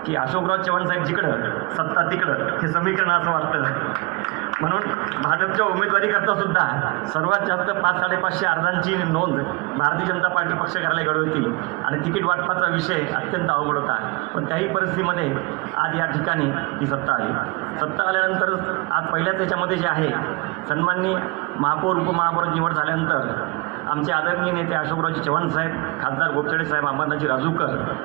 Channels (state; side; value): quieter; left; 27.4 dB